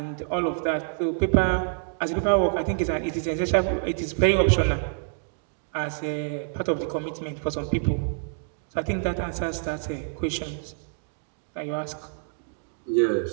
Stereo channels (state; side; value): silent; left; digital silence